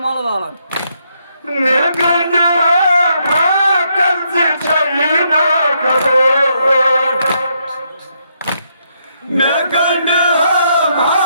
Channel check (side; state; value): both; inverted; correlation -0.77